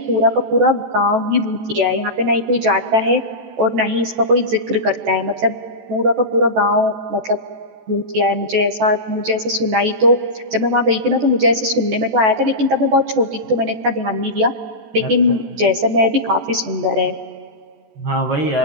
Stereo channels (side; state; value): left; late; 14 ms